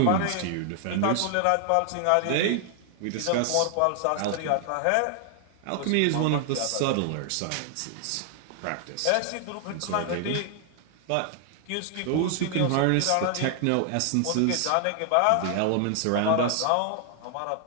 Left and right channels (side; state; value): both; different; correlation 0.00